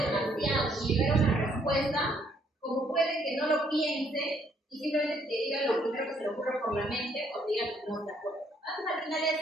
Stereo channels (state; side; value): normal; both; correlation 0.68